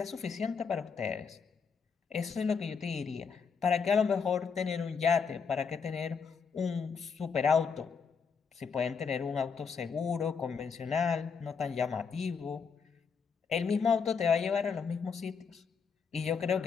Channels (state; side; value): quieter; right; 5.9 dB